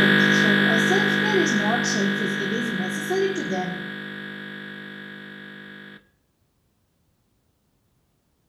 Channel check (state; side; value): identical; both; correlation 1.00